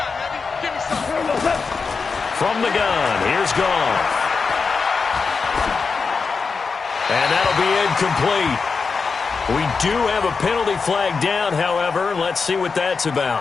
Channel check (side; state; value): right; quieter; 5.0 dB